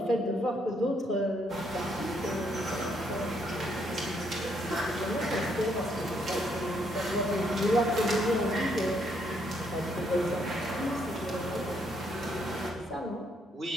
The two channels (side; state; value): both; normal; correlation 0.73